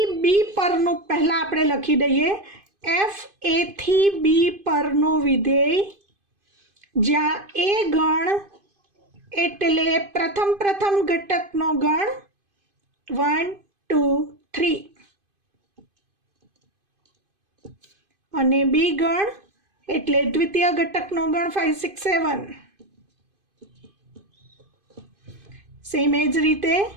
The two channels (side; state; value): left; late; 2.5 ms